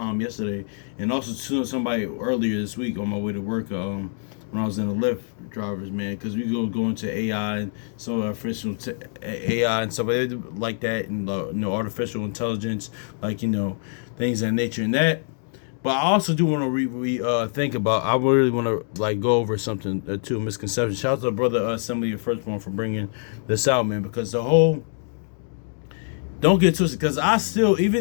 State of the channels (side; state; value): right; silent; 62 dB below the other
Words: yesterday, and also to somebody earlier this week on my way to work. When I was in the Lyft drivers, man, because we go into AI and so artificial AI and stuff like that, and artificial intelligence, like things of that nature and that. But I also do want to think about. I really want to like go over something too. Misconception. Shout out to brother Assembly of Firstborn for bringing this out, man, because the whole don't get twisted, because I still,